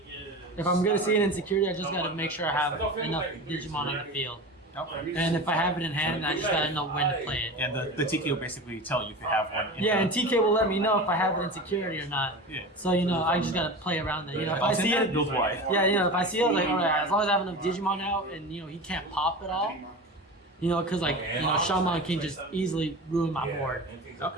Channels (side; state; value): both; normal; correlation 0.30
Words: if I'm gonna see an insecurity, I just gotta make sure I have enough Digimon on the field. Okay. And if I have it in hand, I just gotta know when to play it. And the TK will basically tell you if you have one. Yeah, and TK will let me know if I have it in security or not. Yeah. So I just gotta play around it. If I see it, build wide. yeah, if I see it, like, all right, as long as I have enough Digimon out, and he can't pop at all, because Shaman can just easily ruin my board.